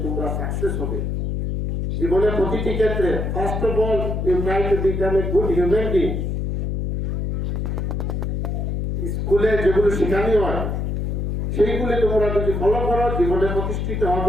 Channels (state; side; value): noise; left; hum, 1 dB below the sound